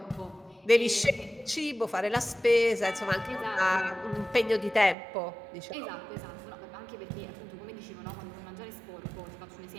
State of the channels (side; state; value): left; drops out; at 5.0 s